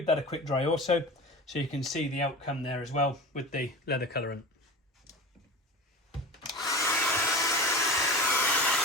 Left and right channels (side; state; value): both; normal; correlation 0.32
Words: that a quick dry also, so you can see the outcome there as well with the leather colourant.